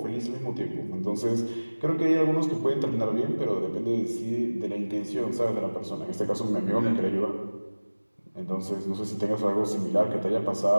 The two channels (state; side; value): inverted; both; correlation -1.00